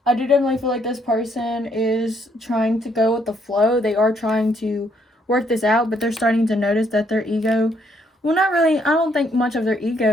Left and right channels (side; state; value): both; normal; correlation 0.70